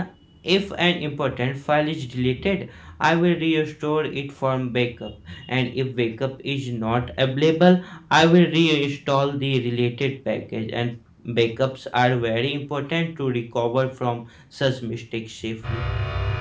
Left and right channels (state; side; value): identical; both; correlation 1.00